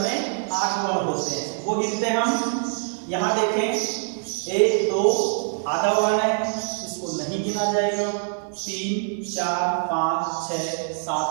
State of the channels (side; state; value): left; silent; digital silence